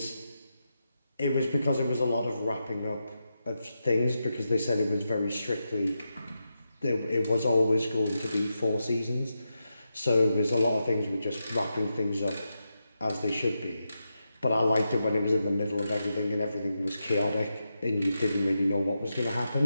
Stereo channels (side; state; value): both; inverted; correlation -0.88